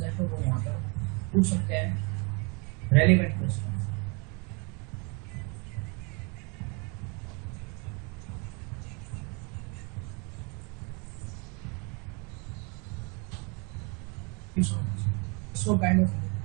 है तो वो यहाँ पर पूछ सकते हैं, relevant question. So kind of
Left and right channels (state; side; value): quieter; left; 32.4 dB